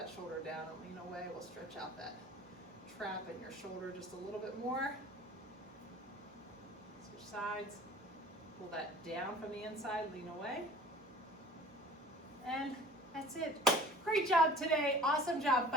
shoulder down and lean away. We'll stretch out that trap in your shoulder just a little bit more. Switch sides. Pull that down from the inside, lean away. And that's it. Great job today. Awesome job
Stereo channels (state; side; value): normal; both; correlation 0.45